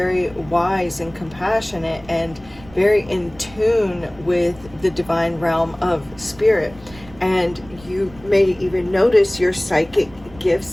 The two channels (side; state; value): right; noise; rumble, 21 dB below the sound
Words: wise and compassionate, and very in tune with the divine realm of spirit. And you may even notice your psychic